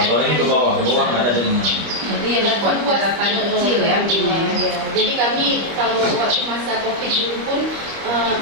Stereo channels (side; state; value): left; late; 25 ms